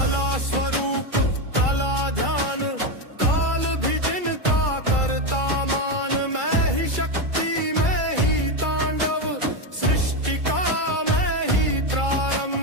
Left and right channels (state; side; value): late; left; 2.3 ms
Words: स्वरूप कला ध्यान काल भी जिनका करता मान मैं ही शक्ति मैं